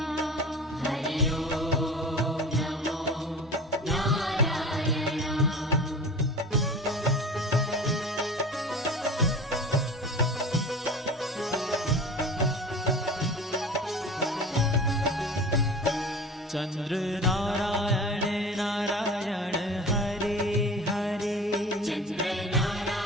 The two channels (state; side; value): normal; both; correlation 0.37